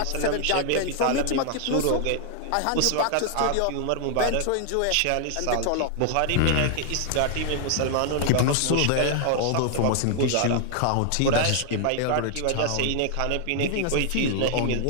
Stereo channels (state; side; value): different; both; correlation 0.00